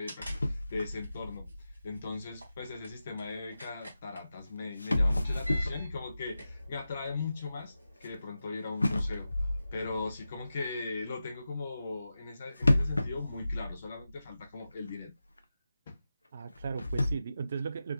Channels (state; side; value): inverted; both; correlation -0.92